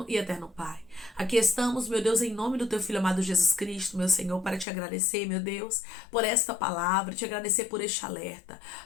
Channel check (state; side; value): drops out; right; at 4.7 s